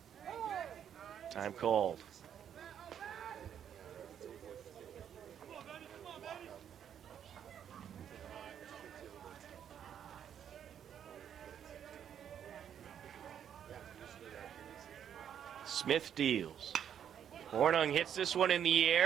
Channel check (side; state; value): left; quieter; 9.1 dB